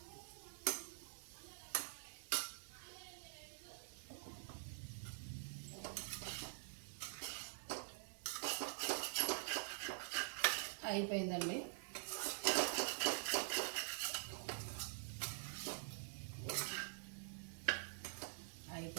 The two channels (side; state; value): left; silent; digital silence